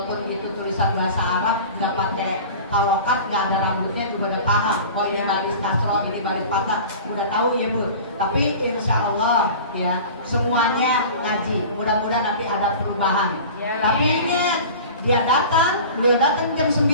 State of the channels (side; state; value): both; inverted; correlation -0.38